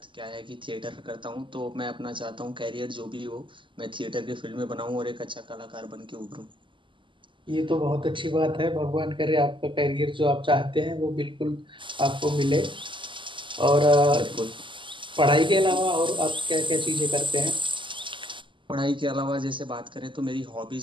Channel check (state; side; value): late; left; 0.24 ms